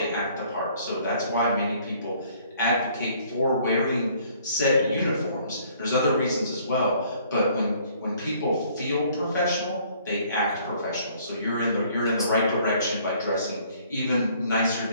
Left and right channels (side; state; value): both; inverted; correlation -0.60